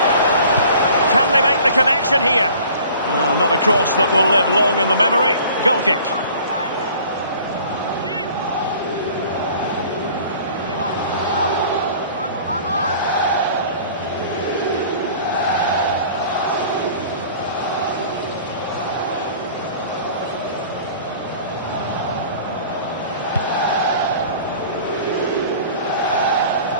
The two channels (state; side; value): inverted; both; correlation -0.48